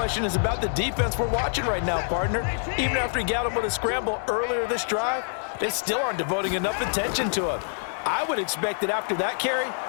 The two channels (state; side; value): silent; right; digital silence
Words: is about the defense we're watching right now, partner. Even after he got him with a scramble earlier this drive, they still aren't devoting enough attention to him. I would expect that after that carry,